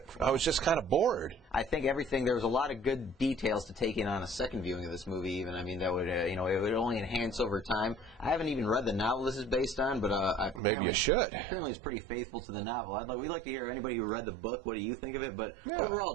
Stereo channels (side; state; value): left; drops out; at 10.6 s